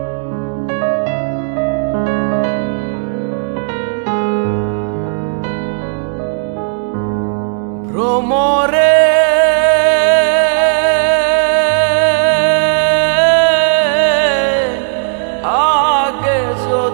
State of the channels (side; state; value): left; silent; digital silence